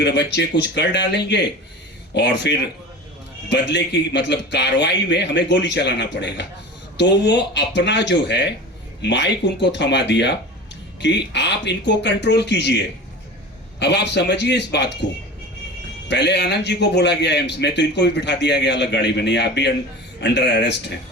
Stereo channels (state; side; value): normal; both; correlation 0.34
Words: बच्चे कुछ कर डालेंगे और फिर बदले की मतलब कार्रवाई में हमें गोली चलाना पड़ेगा। तो वो अपना जो है माइक उनको थमा दिया कि आप इनको कंट्रोल कीजिए। अब आप समझिए इस बात को। पहले आनंद जी को बोला गया एम्स में, तो इनको भी बिठा दिया गया अलग गाड़ी में, नहीं आप भी अंडर अरेस्ट हैं।